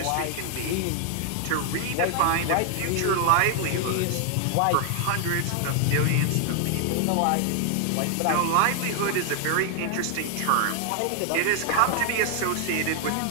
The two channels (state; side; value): different; both; correlation 0.00